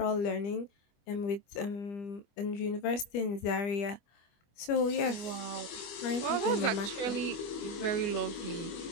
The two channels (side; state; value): right; late; 25 ms